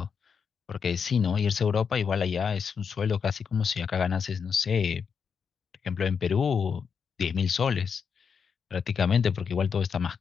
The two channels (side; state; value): right; quieter; 6.4 dB